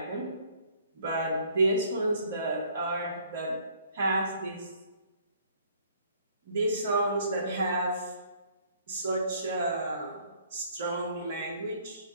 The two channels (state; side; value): inverted; both; correlation -0.60